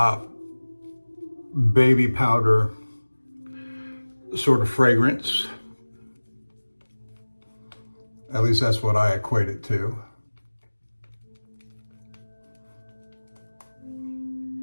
baby powder sort of fragrance. At least that's what I equate it to.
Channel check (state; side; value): inverted; both; correlation -1.00